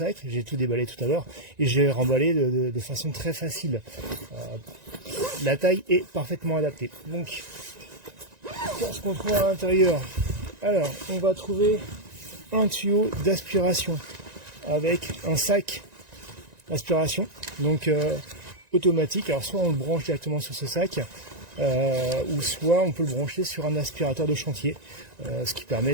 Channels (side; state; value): left; late; 1.9 ms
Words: J'ai tout déballé tout à l'heure et j'ai remballé de façon très facile. La taille est parfaitement adaptée. Donc, qu'est-ce qu'on trouve à l'intérieur? Alors, on va trouver un tuyau d'aspiration avec un sac d'aspiration, donc automatique. Alors, soit on le branche directement sur ce sac, ou soit on peut le brancher sur un aspirateur de chantier, ce qui